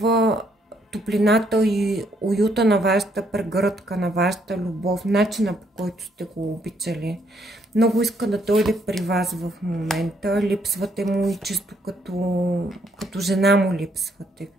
топлината и уюта на вашата прегръдка, на вашата любов, начина по който сте го обичали. Много иска да дойде при вас в момента. Липсвате му и чисто като жена му липсвате.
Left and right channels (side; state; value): both; normal; correlation 0.71